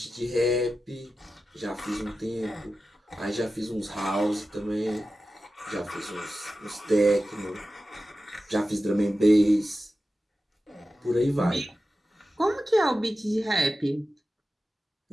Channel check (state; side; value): normal; both; correlation 0.93